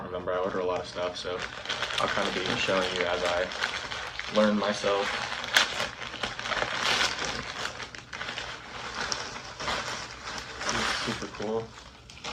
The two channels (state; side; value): identical; both; correlation 1.00